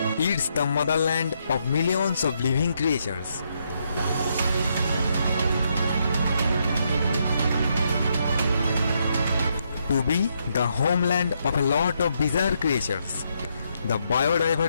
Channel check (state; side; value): inverted; both; correlation -0.77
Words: It's the motherland of millions of living creatures. To be the homeland of a lot of bizarre creatures, the